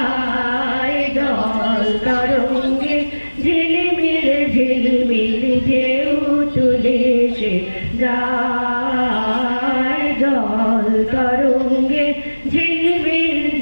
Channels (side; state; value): both; inverted; correlation -1.00